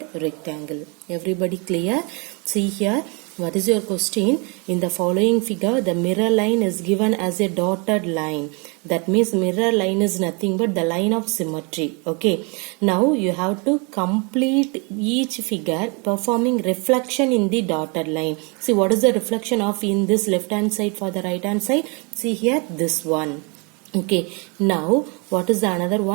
rectangle. Everybody clear? See here, what is your question? In the following figure, the mirror line is given as a dotted line. That means mirror line is nothing but the line of symmetry. Okay, now you have to complete each figure performing reflection in the dotted line. See, what is the reflection of in this left hand side for the right hand side? See here, this one. Okay, now what is the another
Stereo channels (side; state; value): left; quieter; 32.3 dB